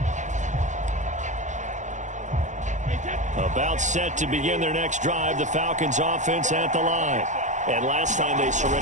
About set to begin their next drive, the Falcons offense at the line. And last time they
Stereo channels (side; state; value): left; late; 0.35 ms